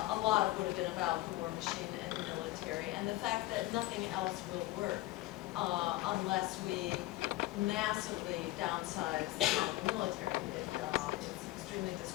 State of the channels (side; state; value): right; quieter; 17.7 dB